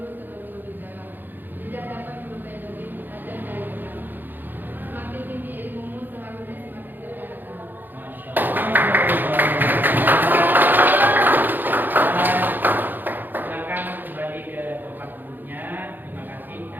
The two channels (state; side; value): late; left; 0.090 ms